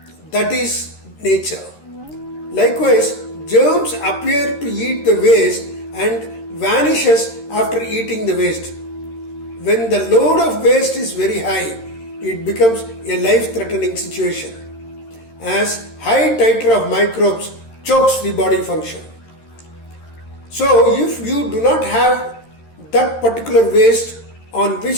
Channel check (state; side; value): late; right; 13 ms